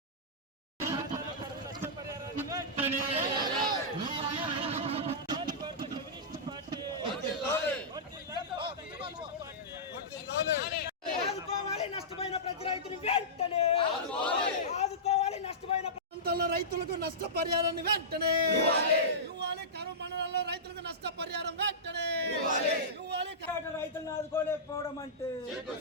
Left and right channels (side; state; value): both; normal; correlation -0.16